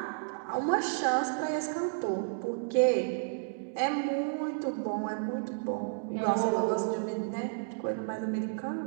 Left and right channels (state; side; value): silent; left; digital silence